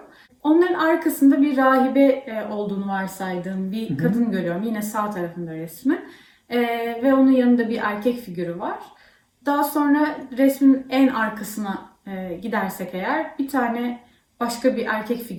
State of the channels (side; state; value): both; identical; correlation 1.00